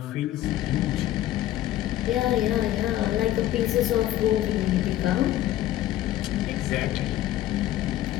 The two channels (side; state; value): right; quieter; 13.8 dB